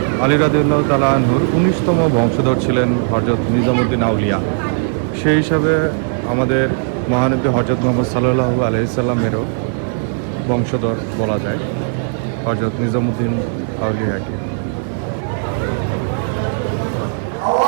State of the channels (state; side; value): silent; left; digital silence